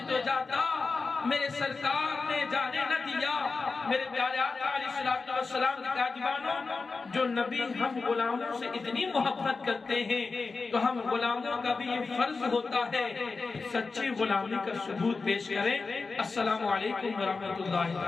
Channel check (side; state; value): right; quieter; 4.2 dB